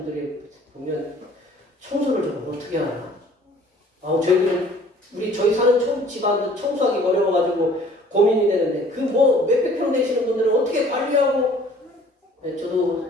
보면 청소를 좀 어떻게 하나? 저희 사는 집안도 청소하기 어려워가지고 고민이 되는데 몇백 평 되시는 분들은 어떻게 관리하고?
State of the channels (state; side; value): normal; both; correlation 0.53